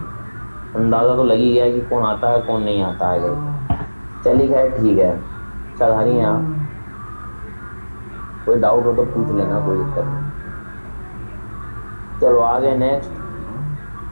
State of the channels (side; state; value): both; inverted; correlation -1.00